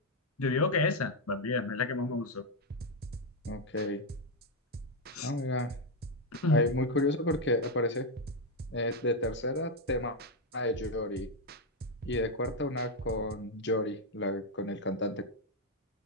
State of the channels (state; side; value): normal; both; correlation 0.03